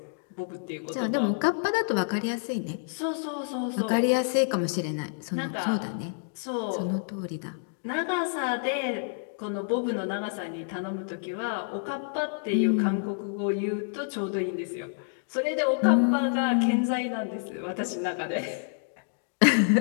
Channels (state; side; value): silent; right; digital silence